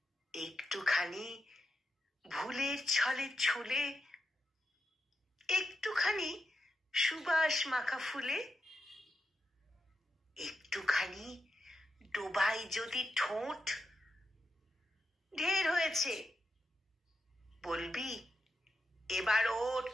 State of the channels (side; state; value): both; normal; correlation 0.86